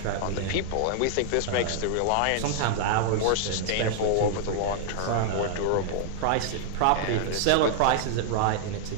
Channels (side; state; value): both; different; correlation -0.01